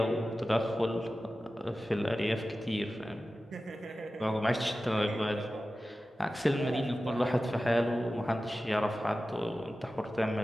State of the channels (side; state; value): both; normal; correlation 0.95